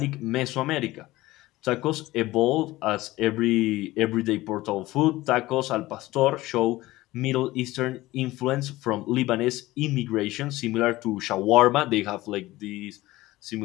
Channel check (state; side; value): quieter; right; 18.0 dB